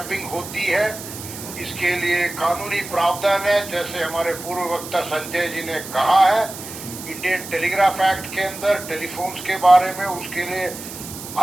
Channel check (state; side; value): noise; right; hiss, 11 dB below the sound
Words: होती है, इसके लिए कानूनी प्रावधान है। जैसे हमारे पूर्व वक्ता संजय जी ने कहा है, इंडियन टेलीग्राफ एक्ट के अंदर टेलीफोन्स के बारे में उसके लिए